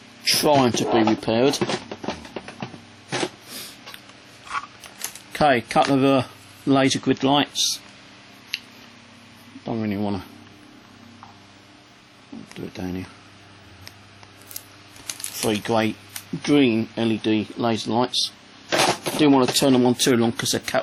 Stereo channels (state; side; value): identical; both; correlation 1.00